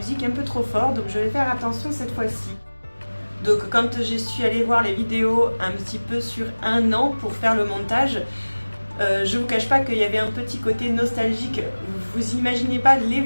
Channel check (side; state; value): both; inverted; correlation -1.00